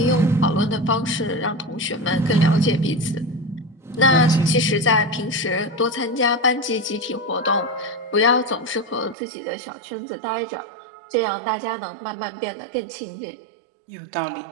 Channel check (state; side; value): drops out; left; at 9.2 s